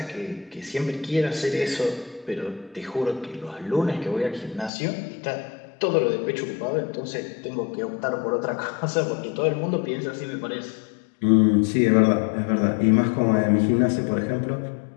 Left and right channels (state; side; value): drops out; right; at 4.7 s